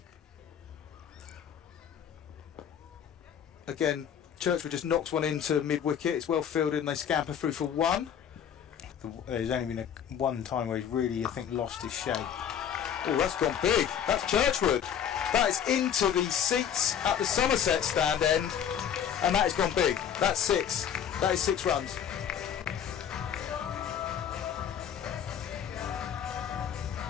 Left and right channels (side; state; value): right; quieter; 8.7 dB